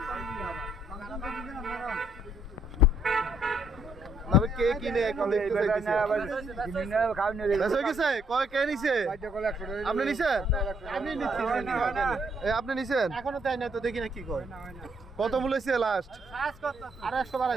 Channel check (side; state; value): both; normal; correlation 0.70